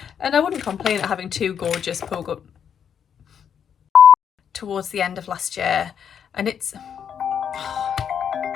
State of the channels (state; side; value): quieter; right; 8.1 dB